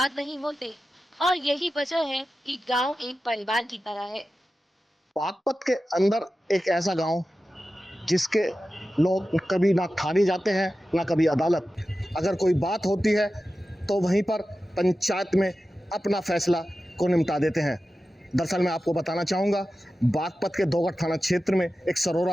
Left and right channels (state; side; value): normal; both; correlation 0.93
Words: नहीं होते, और यही वजह है कि गांव एक परिवार की तरह है। बागपत के अंदर एक ऐसा गांव जिसके लोग कभी ना थाने जाते हैं ना कभी अदालत। अगर कोई बात होती है तो वहीं पर पंचायत में अपना फैसला को निपटा देते हैं। दरअसल मैं आपको बताना चाहूँगा, बागपत के दोगढ़ थाना क्षेत्र में एक